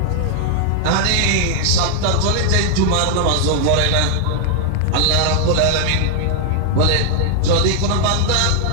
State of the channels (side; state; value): both; different; correlation 0.00